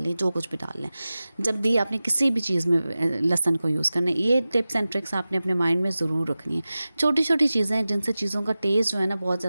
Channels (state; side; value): inverted; both; correlation -0.96